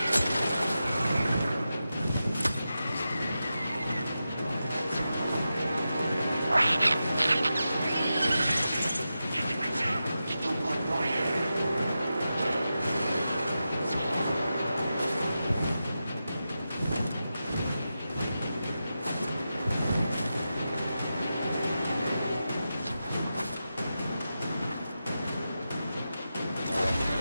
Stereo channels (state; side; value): inverted; both; correlation -0.91